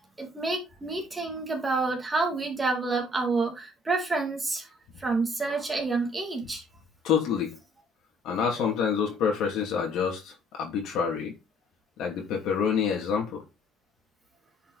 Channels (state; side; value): normal; both; correlation 0.60